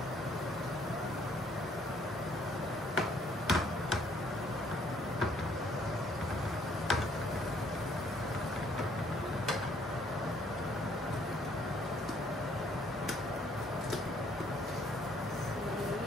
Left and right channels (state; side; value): normal; both; correlation 0.64